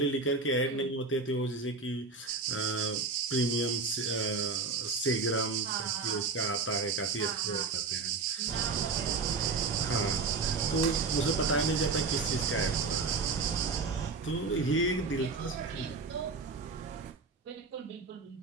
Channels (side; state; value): left; quieter; 4.2 dB